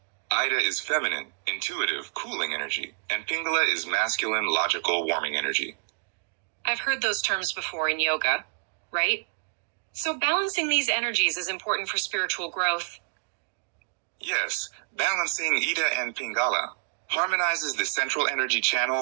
Ida is feminine, intuitive, cooling energy, and Pingala is masculine, logical, warming energy. I've heard those terms before in yoga, right? So balancing these energies is important for spiritual growth. Yes, balancing Ida and Pingala harmonizes the central energy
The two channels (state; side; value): silent; left; digital silence